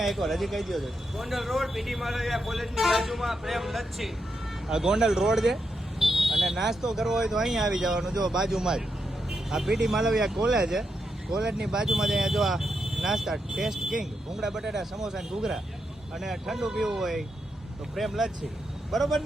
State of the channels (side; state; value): both; normal; correlation 0.84